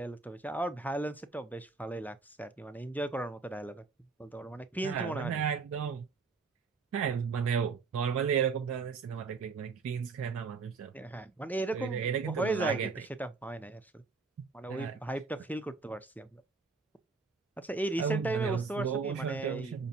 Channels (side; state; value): left; quieter; 4.6 dB